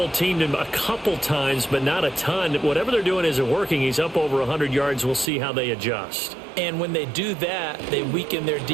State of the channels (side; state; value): left; drops out; at 5.3 s